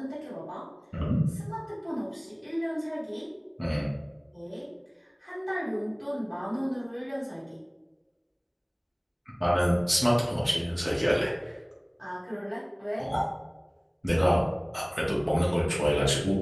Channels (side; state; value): both; identical; correlation 1.00